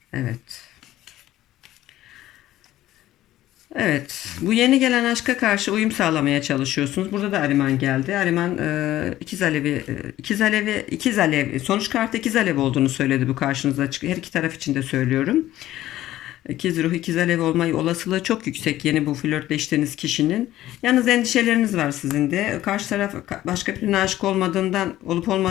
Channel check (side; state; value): right; quieter; 14.4 dB